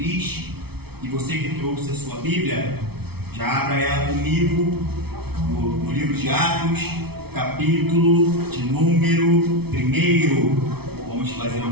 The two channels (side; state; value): left; late; 0.97 ms